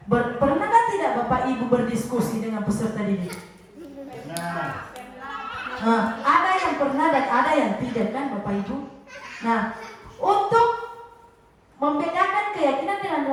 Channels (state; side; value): identical; both; correlation 1.00